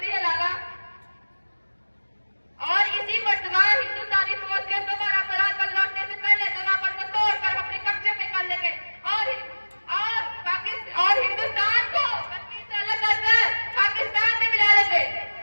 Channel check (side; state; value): both; inverted; correlation -1.00